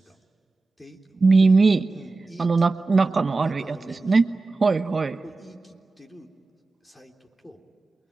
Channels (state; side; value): quieter; left; 3.6 dB